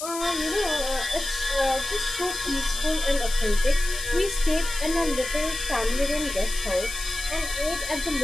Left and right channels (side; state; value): left; noise; hiss, 7 dB below the sound